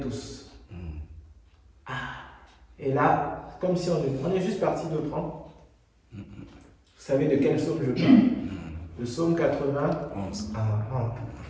Ah, et là, comme si on est juste parti de prendre. Vous savez de quel psaume je parle? Le psaume 91.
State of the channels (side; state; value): both; identical; correlation 1.00